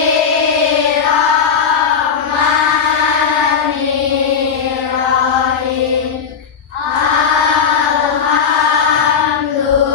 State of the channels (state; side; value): quieter; right; 6.6 dB